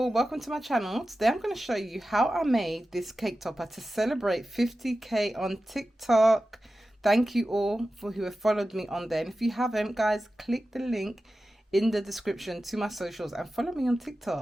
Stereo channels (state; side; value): normal; both; correlation 0.94